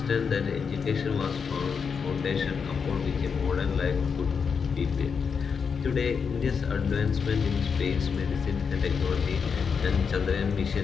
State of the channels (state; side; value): quieter; right; 6.0 dB